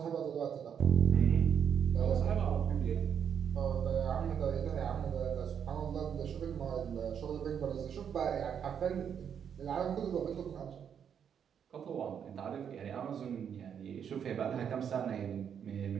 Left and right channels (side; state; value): left; quieter; 8.1 dB